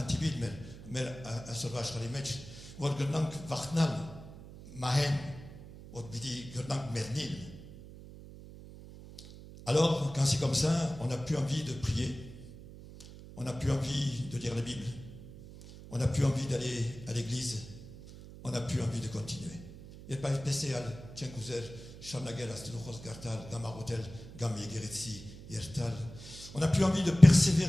mais à sauvage les matchs, ou que dans vartnal, mahen, ou bidi que dans mernil. Alors, quand c'est comme ça, on n'a plus envie de prier, on n'a plus envie de lire la Bible, on n'a plus envie d'aller à l'église, on n'a plus envie de continuer. Il n'y a pas de spécial, tiens, cousin, Charnagel, Astelochos, Gartal, Gamarotel, Gamegeretsi, Yertal. On n'a plus envie de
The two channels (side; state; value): right; noise; hum, 16 dB below the sound